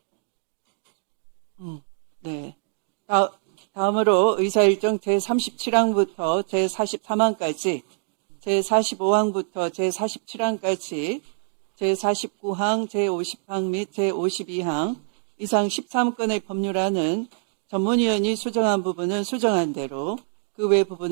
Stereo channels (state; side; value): silent; left; digital silence